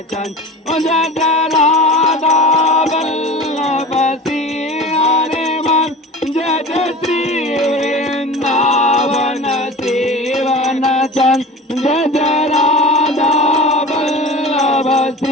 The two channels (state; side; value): normal; both; correlation 0.36